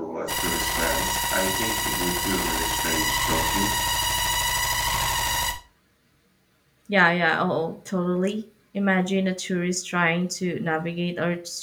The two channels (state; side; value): identical; both; correlation 1.00